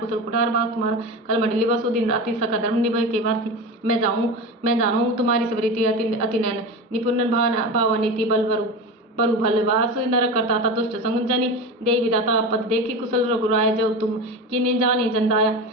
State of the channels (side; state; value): both; normal; correlation 0.26